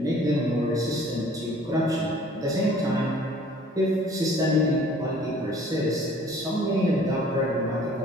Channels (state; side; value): normal; both; correlation 0.53